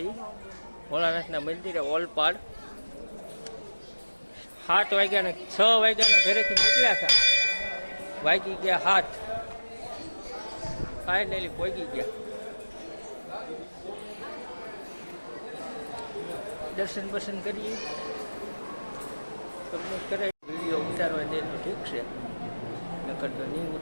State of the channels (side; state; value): both; inverted; correlation -1.00